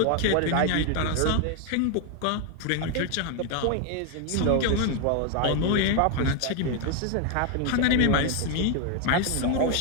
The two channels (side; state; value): both; different; correlation 0.01